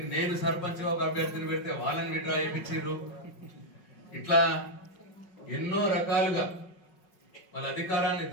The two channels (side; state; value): right; late; 5.1 ms